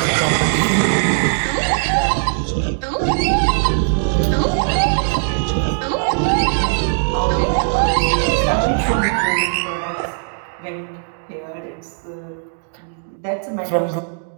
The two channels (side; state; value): left; silent; digital silence